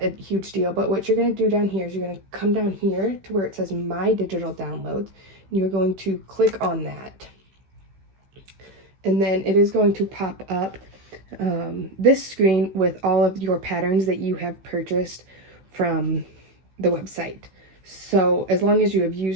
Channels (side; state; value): left; late; 15 ms